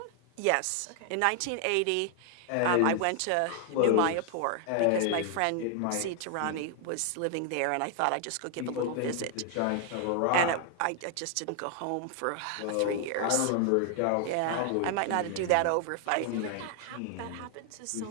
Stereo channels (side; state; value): both; different; correlation 0.00